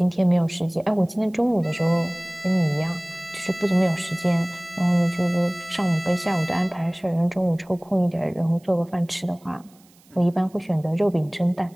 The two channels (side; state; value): right; noise; hiss, 30 dB below the sound